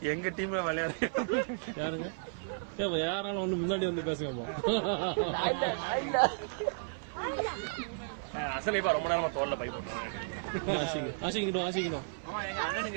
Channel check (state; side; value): silent; left; 55 dB below the other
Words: எங்க டீம்ல விளையாடு யாருங்க? யாராலும் ஒண்ணு முன்னாடி வந்து பேசுங்கப்பா. அசலைப்பா ரொம்ப நேரமா தோல்ல பை போட்டுருவாங்க. ஆசிக்கணும்.